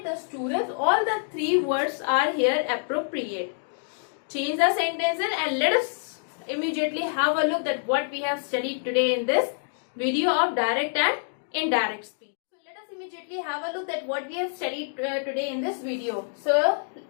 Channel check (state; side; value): silent; right; digital silence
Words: the students. All the three words are here appropriate. Change the sentences and let us immediately have a look at what we have studied today in this video of direct and indirect speech. So let us immediately have a look at what we have studied today in this video. So